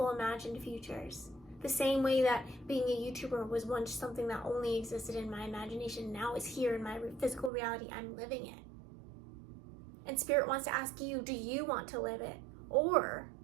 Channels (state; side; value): drops out; left; at 7.5 s